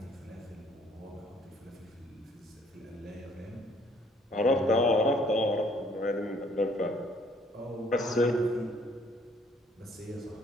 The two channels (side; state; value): both; normal; correlation 0.62